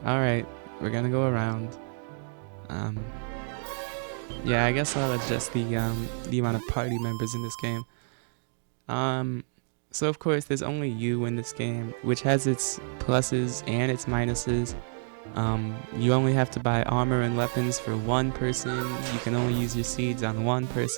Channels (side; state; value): left; silent; digital silence